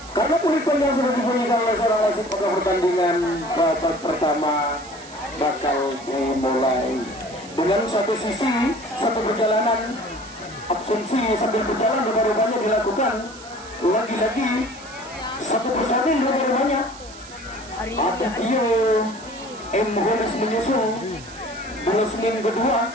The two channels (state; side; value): noise; right; hiss, 18 dB below the sound